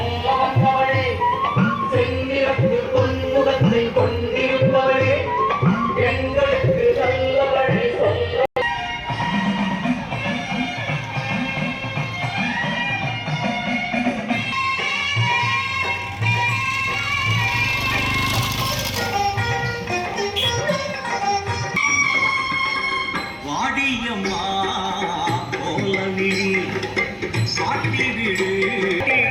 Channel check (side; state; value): both; identical; correlation 1.00